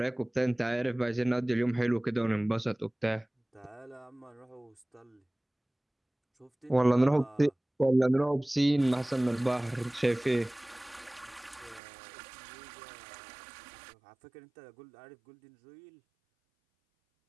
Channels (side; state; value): left; drops out; at 11.8 s